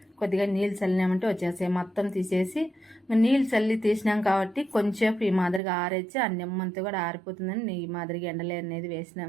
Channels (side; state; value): left; drops out; at 5.6 s